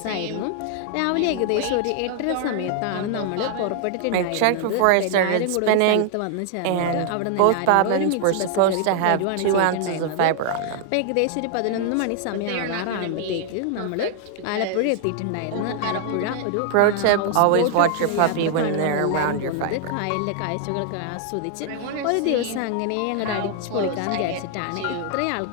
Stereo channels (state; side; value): different; both; correlation 0.00